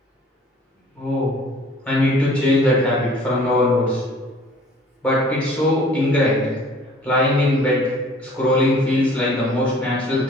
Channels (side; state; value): both; normal; correlation 0.52